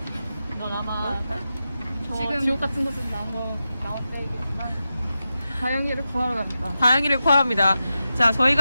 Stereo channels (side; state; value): both; inverted; correlation -0.91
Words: 넌 아마 지금 지옥 같은 곳에서 나올 때이겠지만 다영이를 구하러 갑니다. 다영이를 구합니다. 자,